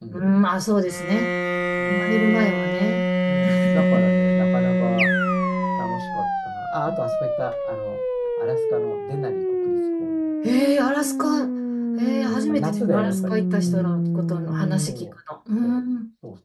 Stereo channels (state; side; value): identical; both; correlation 1.00